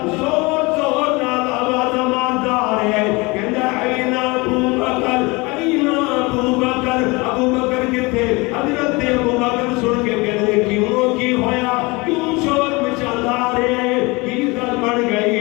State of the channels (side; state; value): right; quieter; 25.3 dB